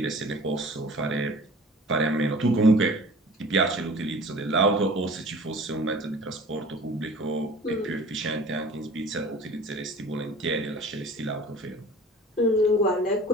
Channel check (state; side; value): normal; both; correlation 0.44